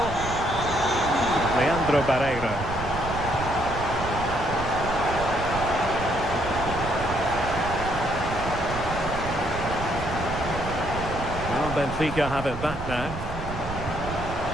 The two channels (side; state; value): right; noise; rumble, 8 dB below the sound